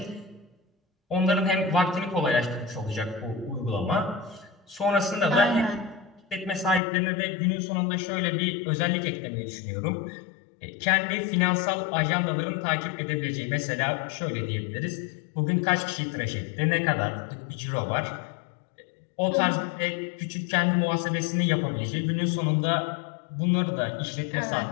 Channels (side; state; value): right; drops out; at 6.8 s